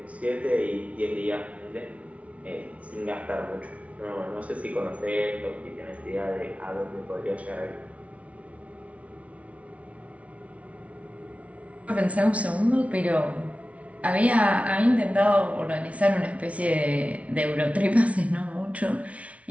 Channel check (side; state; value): left; late; 0.065 ms